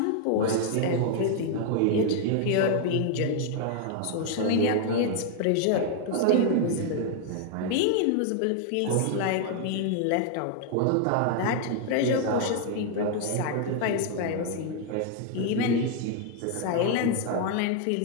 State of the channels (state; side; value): different; both; correlation 0.00